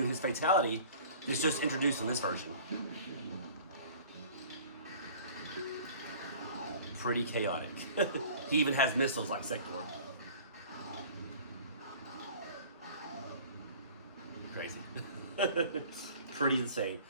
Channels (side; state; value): both; inverted; correlation -0.46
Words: his fatality. It's just introduced in this version. Pretty chaotic. He even has missiles like Sector. Crazy. Pretty insane.